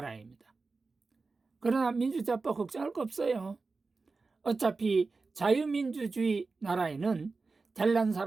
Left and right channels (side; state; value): left; quieter; 4.0 dB